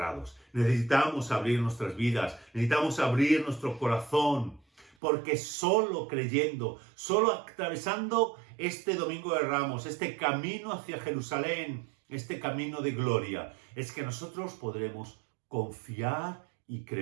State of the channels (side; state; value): left; drops out; at 4.9 s